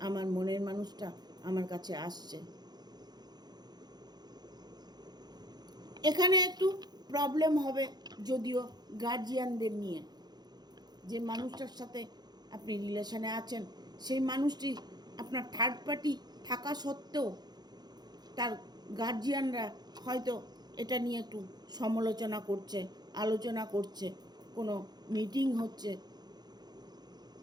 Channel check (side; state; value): left; late; 0.20 ms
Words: আমার মনের মানুষটা আমার কাছে আসছে। এখানে একটু প্রবলেম হবে যদিও গার্জিয়ানদের নিয়ে। যে মানুষটার সাথে আপনি রিলেশনে আছেন, সেই মানুষটি আপনার থার্ড পার্টি থাকা সত্ত্বেও তার গার্জিয়ানরা হয়তো এটা নিয়ে একটু সমালোচনা করছে, আলোচনা করছে, কোনো মিটিং হচ্ছে,